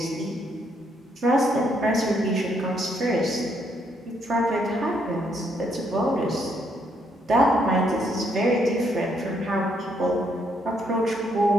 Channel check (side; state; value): both; normal; correlation 0.73